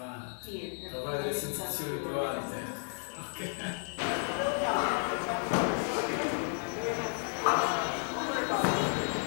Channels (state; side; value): silent; right; 56 dB below the other